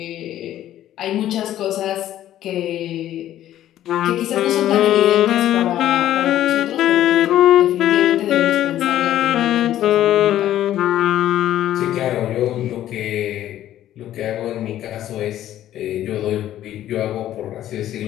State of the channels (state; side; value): quieter; right; 12.5 dB